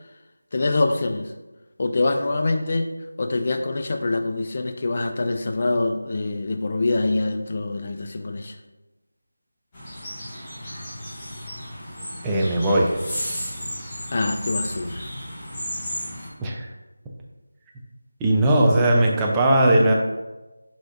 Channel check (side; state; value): both; inverted; correlation -0.88